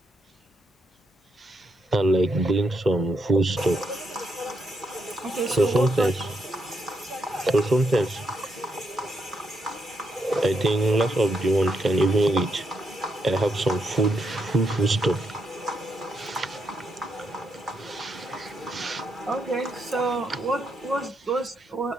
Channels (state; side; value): normal; both; correlation 0.80